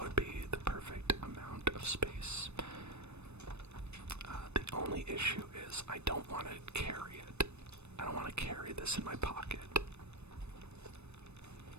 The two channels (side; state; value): left; late; 0.81 ms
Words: would be the perfect amount of space. The only issue is I don't want to carry it. I don't want to carry this in my pocket.